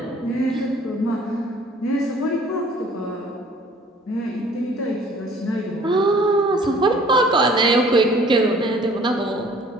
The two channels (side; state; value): both; normal; correlation 0.54